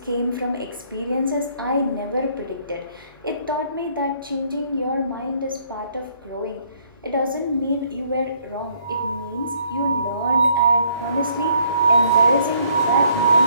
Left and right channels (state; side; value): inverted; both; correlation -0.65